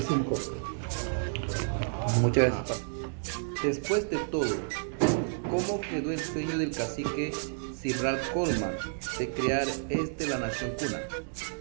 Muchas gracias. Después de todo, ¿cómo quedó el sueño del cacique Simral Coleman de crear la nación cuna?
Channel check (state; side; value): silent; left; digital silence